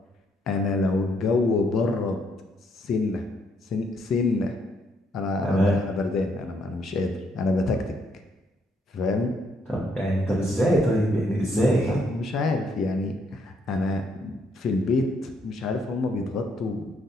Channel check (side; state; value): both; normal; correlation 0.72